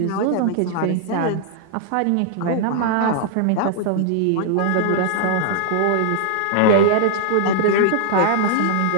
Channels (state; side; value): different; both; correlation -0.01